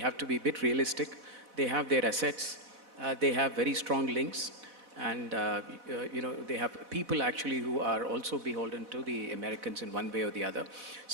to be a bit realistic. They have their assets. They have very strong links. And, they have people actually who are also beholden to the Americans in one way or the other.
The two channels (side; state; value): left; late; 4.1 ms